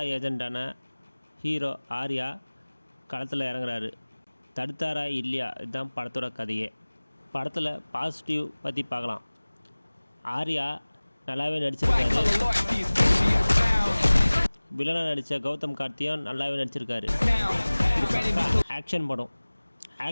ஏஜெண்டான ஹீரோ ஆர்யா களத்தில் இறங்குறாரு. தடுத்தாரா இல்லையா, இதுதான் படத்தோட கதையே. படத்தில் பாசிட்டிவ் பற்றி பார்க்கலாம். ஆர்யா நல்லாவே நடிச்சிருக்காரு. வில்லனாக நடித்த கௌதம் கார்த்தியும் நல்லாவே நடிச்சிருக்காரு. ஆக்ஷன் படம்.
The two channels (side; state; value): both; inverted; correlation -1.00